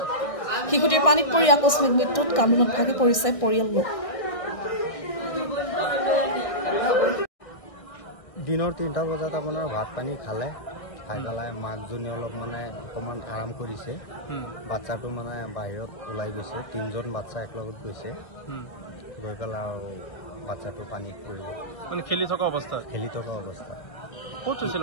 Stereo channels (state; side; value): late; right; 1.6 ms